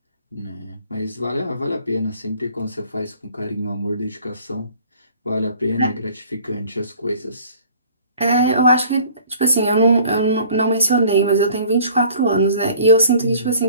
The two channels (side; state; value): both; inverted; correlation -0.52